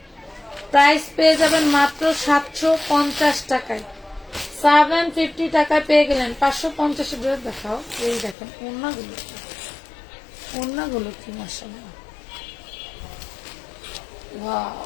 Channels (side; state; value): right; drops out; at 8.3 s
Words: প্রাইস পেয়ে যাবেন মাত্র 750 টাকায়। 750 টাকায় পেয়ে গেলেন। 550 ড্রেস দেখাও। এই দেখেন ওড়নাগুলো, ওড়নাগুলো কি মাশাআল্লাহ, ওয়াও।